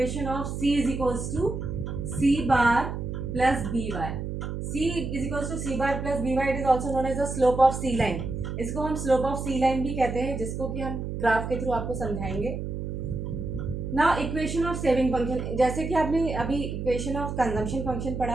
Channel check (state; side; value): noise; right; hum, 5 dB below the sound